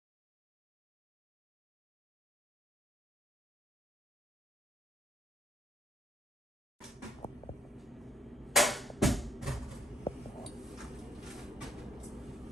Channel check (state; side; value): normal; both; correlation 0.67